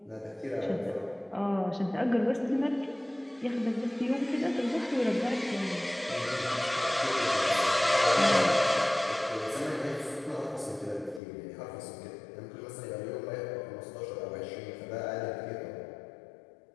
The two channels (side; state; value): right; drops out; at 11.2 s